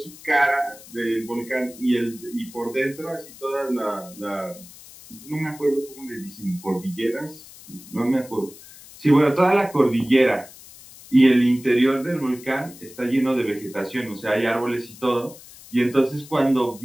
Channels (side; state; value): left; noise; hiss, 19 dB below the sound